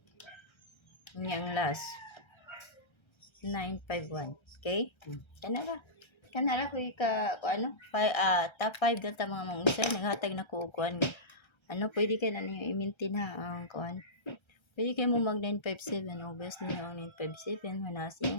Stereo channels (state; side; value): late; right; 1.3 ms